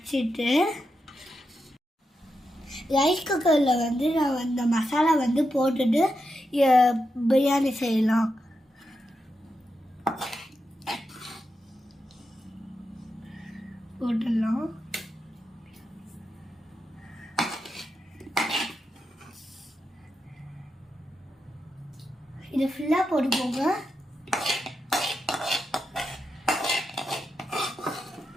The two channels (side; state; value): both; normal; correlation 0.87